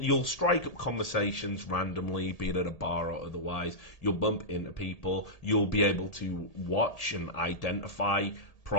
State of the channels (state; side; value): late; right; 1.8 ms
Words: strike up conversations randomly, be it at a bar or otherwise. You'll bump into people. You'll be able to watch and identify